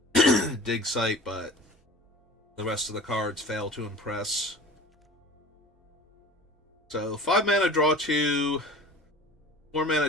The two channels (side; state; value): both; normal; correlation 0.40